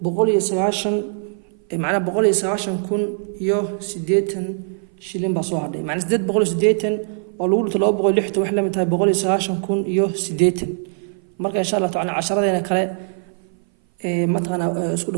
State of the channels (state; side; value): silent; left; 58 dB below the other